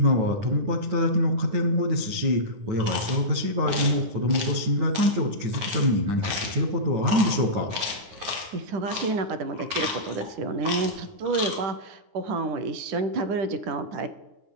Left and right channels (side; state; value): left; late; 9.8 ms